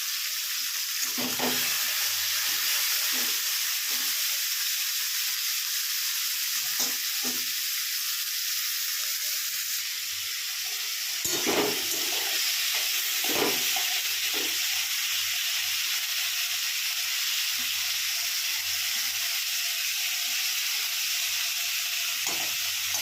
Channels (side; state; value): both; identical; correlation 1.00